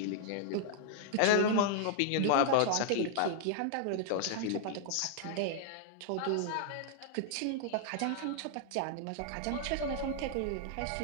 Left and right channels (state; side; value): different; both; correlation 0.00